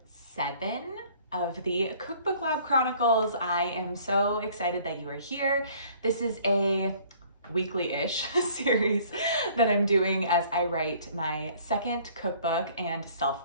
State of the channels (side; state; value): both; inverted; correlation -0.55